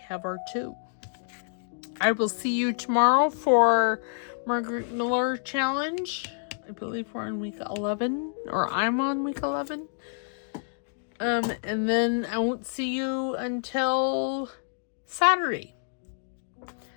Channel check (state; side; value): silent; right; digital silence